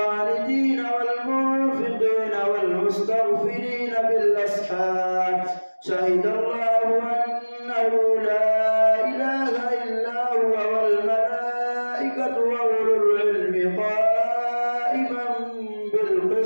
والمنفقين والمستغفرين بالأسحار شهد الله أنه لا إله إلا هو والملائكة وأولو العلم قائما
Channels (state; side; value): inverted; both; correlation -1.00